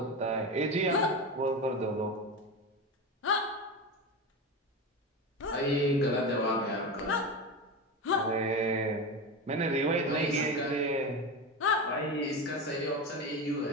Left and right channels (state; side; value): normal; both; correlation 0.22